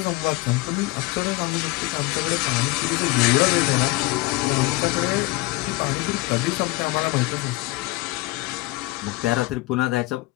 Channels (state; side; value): quieter; right; 21.1 dB